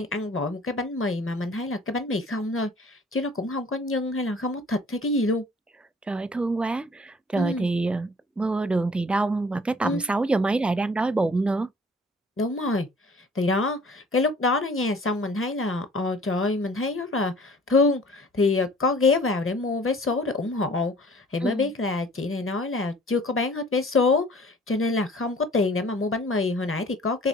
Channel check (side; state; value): both; normal; correlation 0.52